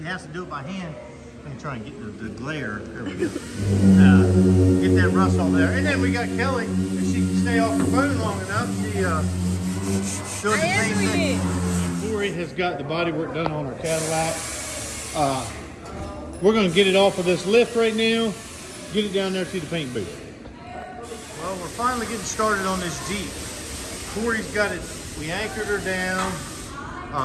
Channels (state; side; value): identical; both; correlation 1.00